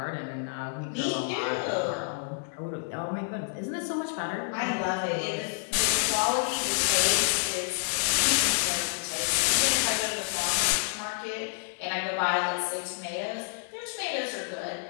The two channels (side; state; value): right; silent; 59 dB below the other